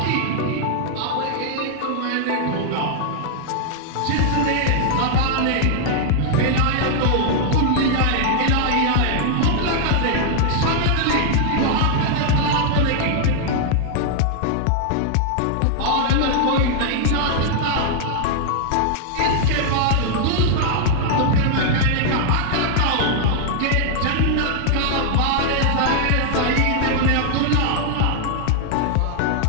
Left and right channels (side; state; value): both; different; correlation 0.00